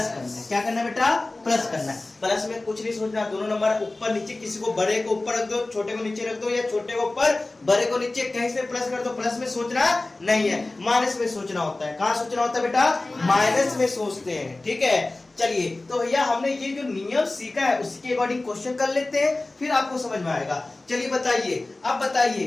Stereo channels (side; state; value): right; quieter; 3.0 dB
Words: करना है। क्या करना है बेटा, प्लस करना है। प्लस में कुछ नहीं सोचना, दोनों नंबर ऊपर नीचे, किसी को बड़े को ऊपर रख दो, छोटे को नीचे रख दो, या छोटे को ऊपर बड़े को नीचे, कहीं से प्लस कर दो। प्लस में सोचना नहीं है, माइनस में सोचना होता है। कहाँ सोचना होता है बेटा, माइनस में सोचते हैं। ठीक है, चलिए तो भैया हमने ये जो नियम सीखा है उसी के अकॉर्डिंग क्वेश्चन कर लेते हैं, फिर आपको समझ में आएगा। चलिए बताइए, अब